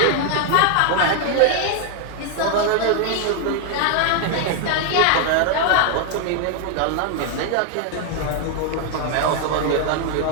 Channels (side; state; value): both; different; correlation 0.00